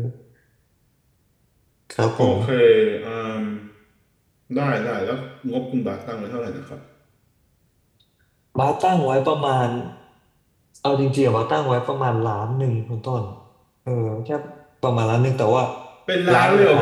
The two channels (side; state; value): both; identical; correlation 1.00